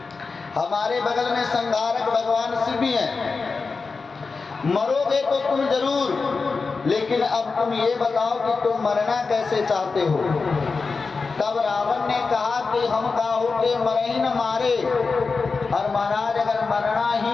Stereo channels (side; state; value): right; quieter; 4.4 dB